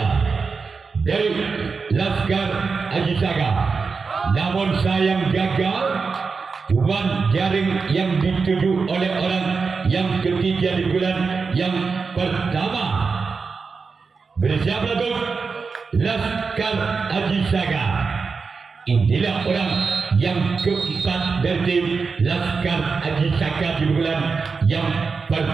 dari Laskar Aji Saka, namun sayang gagal. Cuman jaring yang dituju oleh orang yang ketiga di bulan yang pertama bersama lagu Laskar Aji Saka. Inilah orang yang keempat dari tim Laskar Aji Saka di bulan yang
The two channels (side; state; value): left; quieter; 4.9 dB